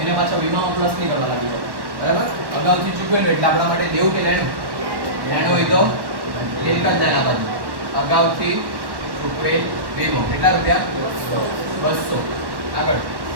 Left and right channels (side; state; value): left; late; 1.1 ms